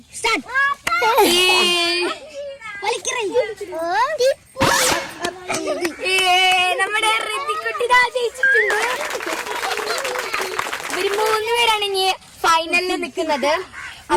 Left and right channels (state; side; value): identical; both; correlation 1.00